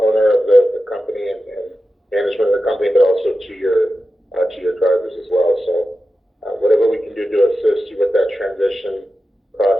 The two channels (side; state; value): both; normal; correlation 0.92